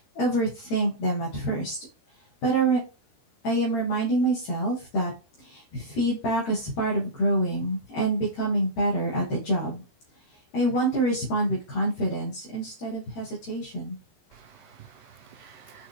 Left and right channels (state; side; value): late; right; 13 ms